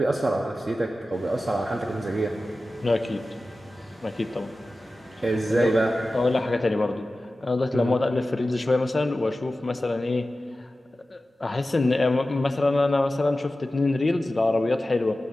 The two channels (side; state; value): both; normal; correlation 0.95